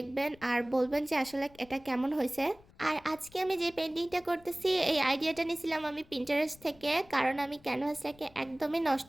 আর বলবেন যে আসলে এটা কেমন হয়েছে। আর আজকে আমি যে পেন্টিংটা করতেছি এই আইডিয়াটা নিয়েছিলাম আমি পিন্টারেস্ট থেকে, কারণ আমি ক্যানভাসটাকে একদমই নষ্ট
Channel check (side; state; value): left; noise; rumble, 26 dB below the sound